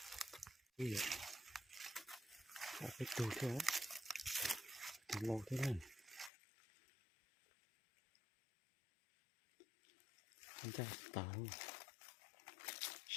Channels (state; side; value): drops out; right; at 6.3 s